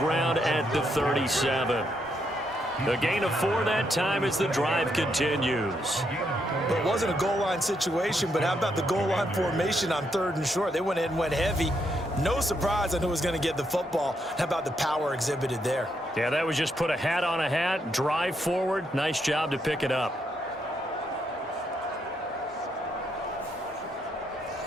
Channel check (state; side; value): normal; both; correlation 0.78